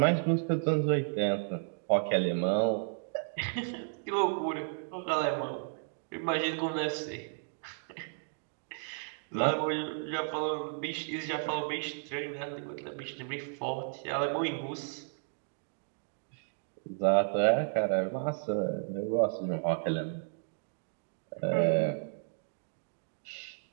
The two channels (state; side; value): silent; left; digital silence